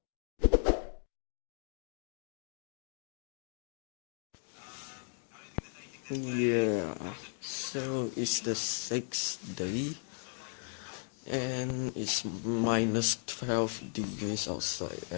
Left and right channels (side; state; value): right; silent; 54 dB below the other